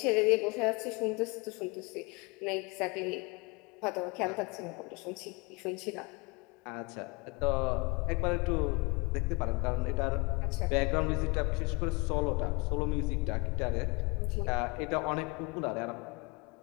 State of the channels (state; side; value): quieter; right; 26.9 dB